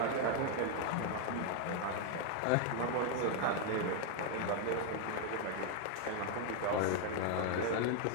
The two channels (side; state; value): both; different; correlation 0.00